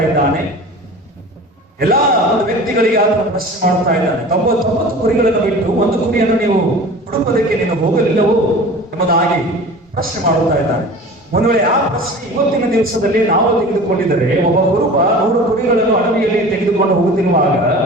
ಇದ್ದಾನೆ, ಎಲ್ಲಾ ಒಂದು ವ್ಯಕ್ತಿಗಳಿಗೆ ಆತನು ಪ್ರಶ್ನೆ ಮಾಡುತ್ತಾ ಇದ್ದಾನೆ. 99 ಕುರಿಗಳನ್ನು ಬಿಟ್ಟು ಒಂದು ಕುರಿಯನ್ನು ನೀವು ಹುಡುಕೋದಕ್ಕೆ ನೀನು ಹೋಗಲಿಲ್ಲವೋ ಎಂಬುದಾಗಿ ಪ್ರಶ್ನೆ ಮಾಡುತ್ತಾ ಇದ್ದಾನೆ. ಒಂದು ವೇಳೆ ಆ ಪ್ರಶ್ನೆ ಇವತ್ತಿನ ದಿವಸದಲ್ಲಿ ನಾವು ತೆಗೆದುಕೊಂಡಿದ್ದರೆ, ಒಬ್ಬ ಕುರುಬ 100 ಕುರಿಗಳನ್ನು ಅಡವಿಯಲ್ಲಿ ತೆಗೆದುಕೊಂಡು ಹೋಗುತ್ತಿರುವಾಗ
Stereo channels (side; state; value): both; normal; correlation 0.39